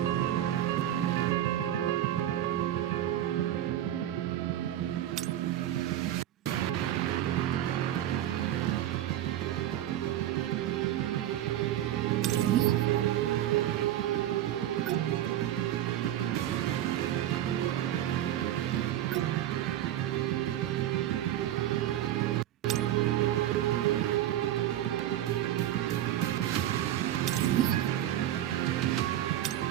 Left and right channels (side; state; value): left; quieter; 12.5 dB